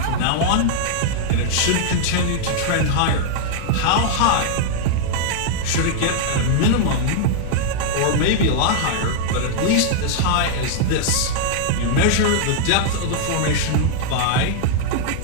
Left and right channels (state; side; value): different; both; correlation -0.01